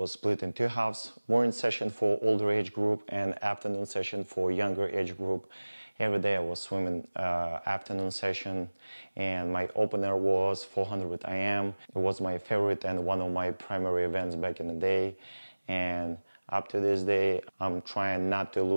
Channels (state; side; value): inverted; both; correlation -1.00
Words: split in 2 halves, morning session for older age group and afternoon session for younger age group. Every day I was swimming afternoon session, and my opener was 400 IM. It was my favorite and one of my primary events back in the day, and up to this day I'm trying not to